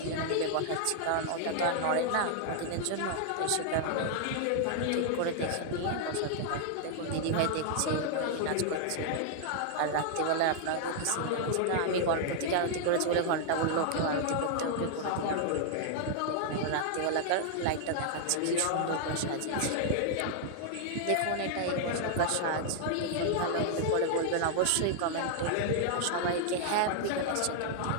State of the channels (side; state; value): both; different; correlation -0.01